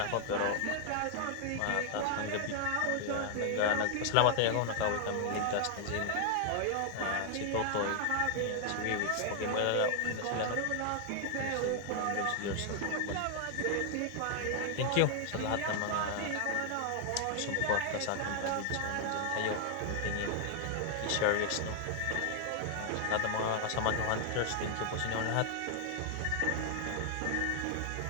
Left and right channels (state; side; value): different; both; correlation 0.00